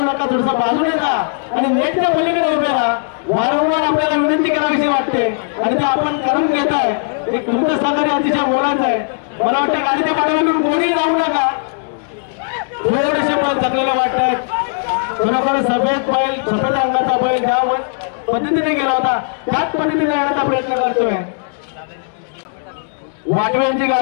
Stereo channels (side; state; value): right; silent; digital silence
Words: नका, थोडंसं बाजूने जा आणि नेटच्या पलीकडे उभे राहा। वारंवार आपल्याला विनंती करावीशी वाटते आणि ते आपण करून घेत आहे। एक तुमचं सहकार्य अतिशय मोलाचं आहे। मला वाटतं गाडीच्या पाठीमागून कोणीही जाऊ नका। थकलेले वाटत खरोखर सफेद रंगाचा बैल ज्या पद्धतीने गेला होता त्याच पद्धतीने येण्याचा प्रयत्न करतोय। वाटव्यांची